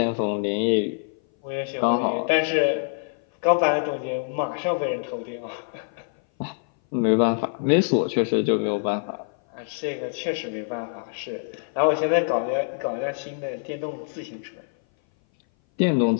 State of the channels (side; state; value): right; silent; 58 dB below the other